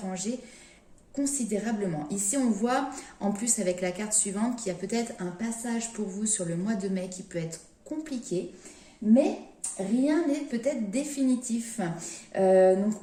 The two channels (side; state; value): both; identical; correlation 1.00